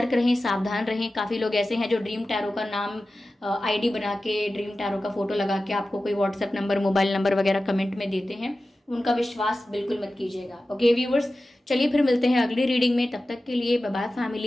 रहें, सावधान रहें। काफ़ी लोग ऐसे हैं जो ड्रीम टैरो का नाम आईडी बना के, ड्रीम टैरो का फोटो लगा के आपको कोई व्हाट्सएप नंबर, मोबाइल नंबर वगैरह कमेंट में देते हैं, उनका विश्वास बिल्कुल मत कीजिएगा। ओके व्यूवर्स, चलिए फिर मिलते हैं अगली रीडिंग में। तब तक के लिए bye bye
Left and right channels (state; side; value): normal; both; correlation 0.95